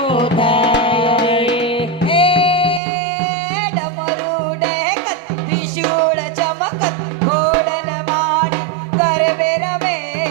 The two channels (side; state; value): left; drops out; at 2.8 s